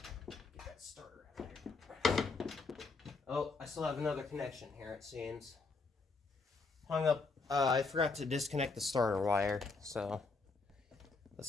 that starter out here. Oh, I still have another connection here, it seems. Hung up. I forgot to disconnect the starter wire, so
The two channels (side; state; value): right; quieter; 4.0 dB